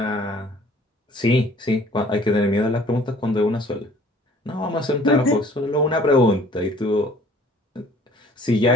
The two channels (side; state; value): both; normal; correlation 0.54